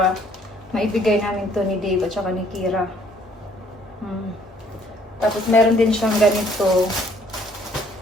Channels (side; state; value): both; normal; correlation 0.61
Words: maibigay namin to ni Dave at saka ni Kira. Tapos, meron din siyang ganito.